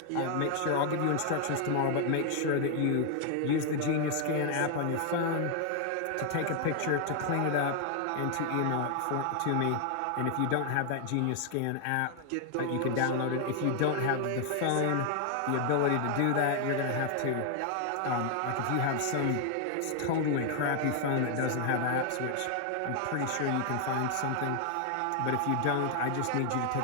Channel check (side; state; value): both; different; correlation 0.00